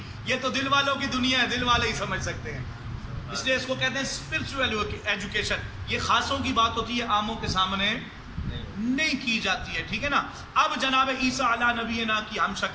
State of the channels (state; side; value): identical; both; correlation 1.00